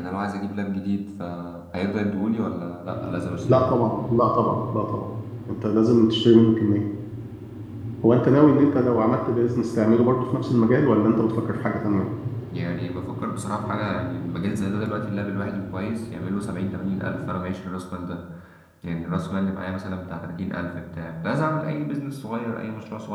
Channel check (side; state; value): both; identical; correlation 1.00